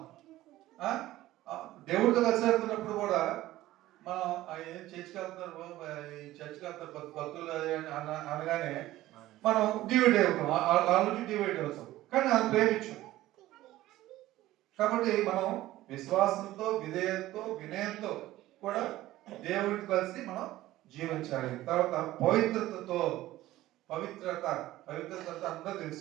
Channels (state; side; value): quieter; left; 15.8 dB